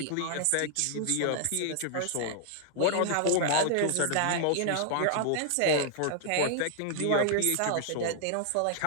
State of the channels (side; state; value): both; different; correlation -0.01